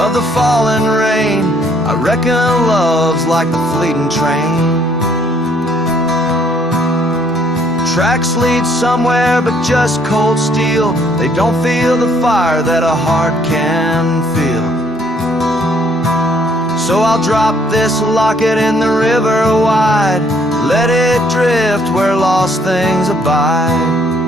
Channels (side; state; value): both; normal; correlation 0.65